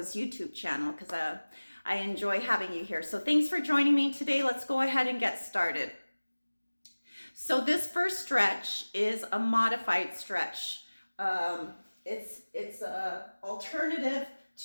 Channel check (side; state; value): both; inverted; correlation -1.00